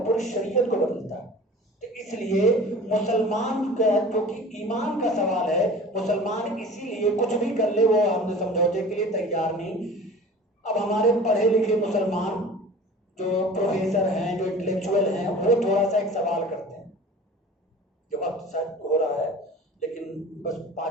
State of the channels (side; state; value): both; normal; correlation 0.41